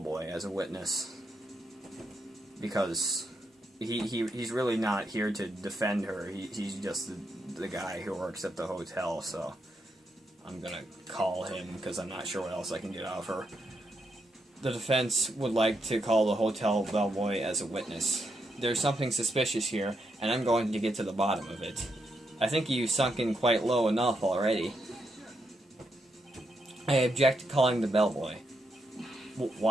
as a witness. Because he's really not here to defend her. He's just the guy who works at the hotel, so I'm gonna call him because I'm not sure what else I can get out of her. The defense would like to call the hotel bellboy as a witness. There's something suspicious here, and I'm going to get to the bottom of it. I think you've sunk in quite low enough already. I object to calling the bellboy.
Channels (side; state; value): both; normal; correlation 0.81